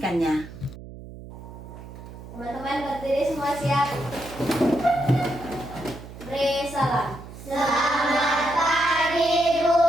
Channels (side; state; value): right; noise; hum, 15 dB below the sound